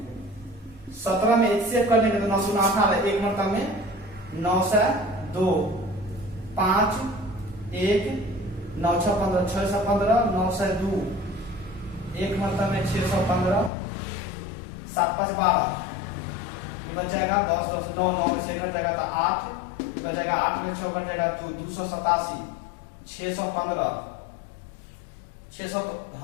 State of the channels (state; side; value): drops out; right; at 13.7 s